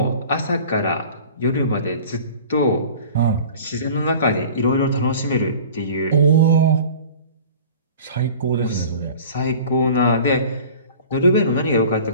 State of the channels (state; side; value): inverted; both; correlation -0.42